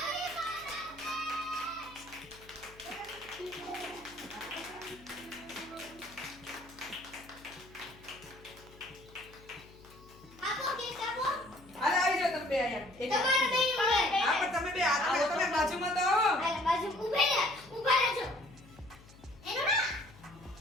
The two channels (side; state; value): left; noise; hum, 22 dB below the sound